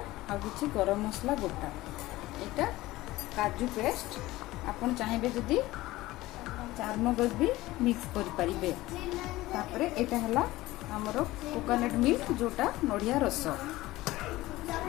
आ किछि गरम मसला गोटा एटा काजू पेस्ट आपन चाहिए जदि चारमगज भी मिक्स करि परिबे। तापरे एटा हला हमर कोकोनट मिल्क जोटा नडिया रस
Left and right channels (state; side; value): quieter; right; 17.9 dB